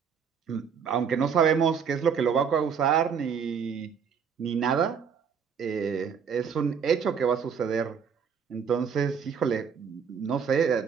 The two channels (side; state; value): left; quieter; 6.7 dB